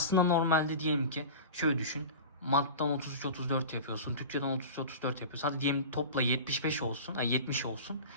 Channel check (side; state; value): both; inverted; correlation -0.32